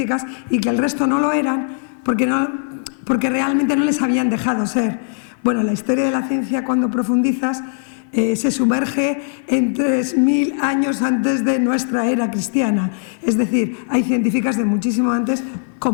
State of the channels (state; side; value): silent; right; 57 dB below the other